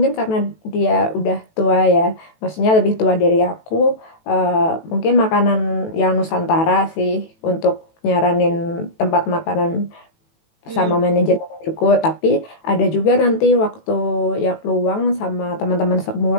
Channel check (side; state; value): right; late; 18 ms